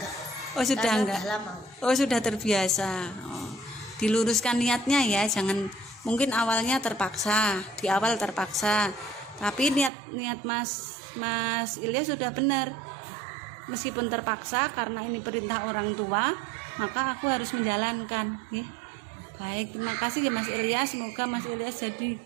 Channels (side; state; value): left; drops out; at 9.9 s